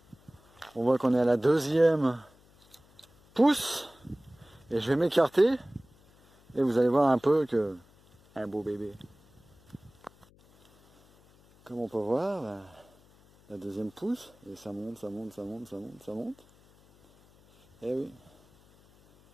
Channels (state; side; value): noise; left; hum, 29 dB below the sound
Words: on voit qu'on est à la 2e pousse. Et je vais m'écarter. Et vous allez voir un peu que un beau bébé. Comme on peut voir, la 2e pousse. Et ça monte, ça monte, ça monte, ça monte, ça monte. Et oui.